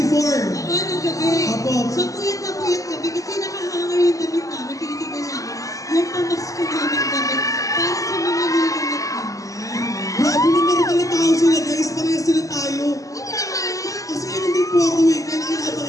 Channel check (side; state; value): right; late; 0.16 ms